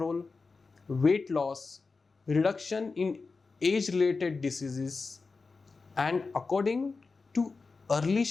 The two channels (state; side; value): quieter; right; 4.2 dB